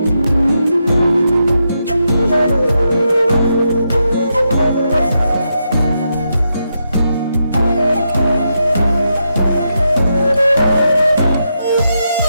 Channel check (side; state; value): both; inverted; correlation -0.83